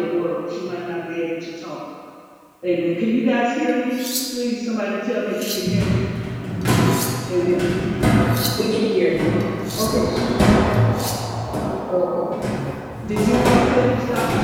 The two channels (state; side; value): identical; both; correlation 1.00